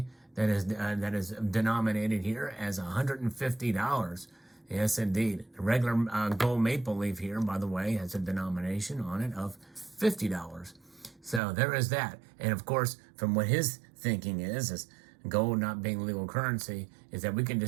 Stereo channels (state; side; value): drops out; left; at 11.4 s